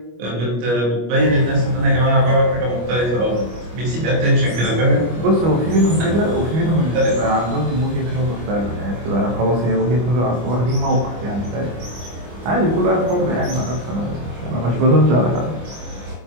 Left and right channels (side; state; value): left; late; 25 ms